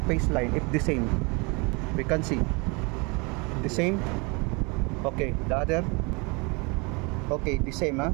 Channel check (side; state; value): left; quieter; 29.5 dB